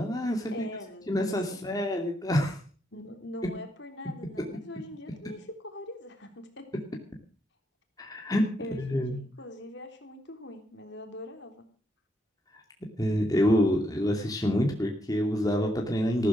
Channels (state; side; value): normal; both; correlation 0.78